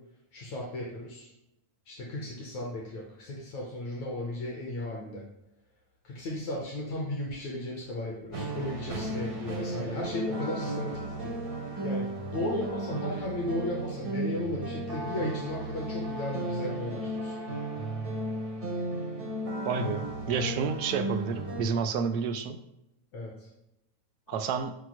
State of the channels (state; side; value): late; right; 9.1 ms